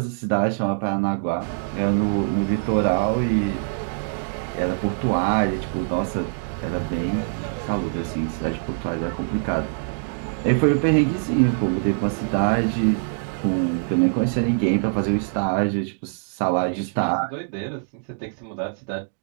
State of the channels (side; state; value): left; silent; digital silence